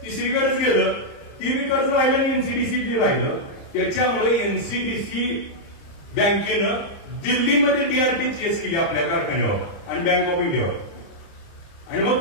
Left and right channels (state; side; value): late; right; 30 ms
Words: तिसरीकडेच गेलं. ती बी कर्ज राहिलं आणि एनसीडीसी बी राहिलं. त्याच्यामुळे एनसीडीसी बँकेनं दिल्लीमध्ये डीआरटी केस केली आपल्या कारखान्यावर आणि बँक ऑफ इंडियावर. आणि मग